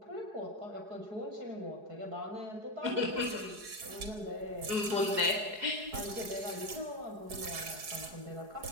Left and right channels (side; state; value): left; late; 4.7 ms